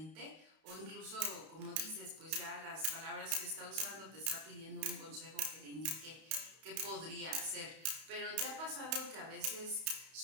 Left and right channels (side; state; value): left; late; 31 ms